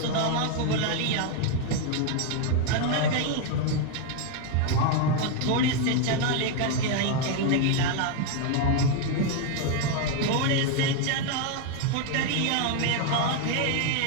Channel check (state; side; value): different; both; correlation 0.01